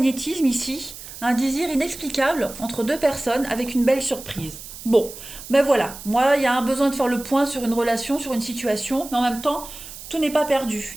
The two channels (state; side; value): noise; right; hiss, 14 dB below the sound